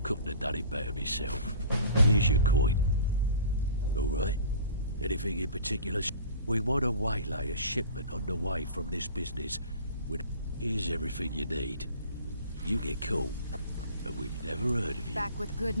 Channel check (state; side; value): inverted; both; correlation -0.43